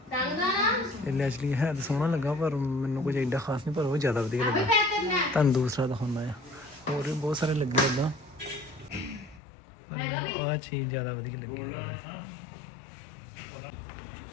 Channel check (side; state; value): right; drops out; at 9.4 s